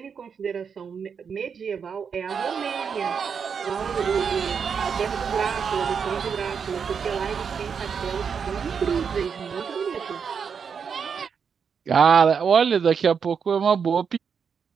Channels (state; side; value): quieter; left; 6.5 dB